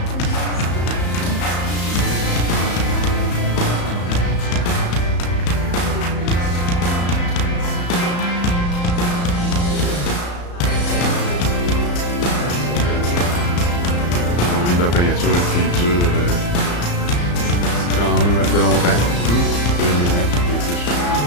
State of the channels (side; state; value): right; late; 34 ms